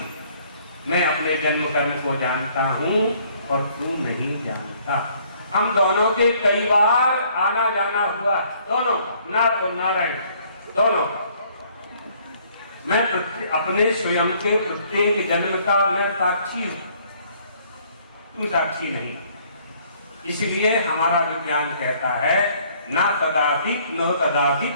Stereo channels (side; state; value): both; inverted; correlation -0.62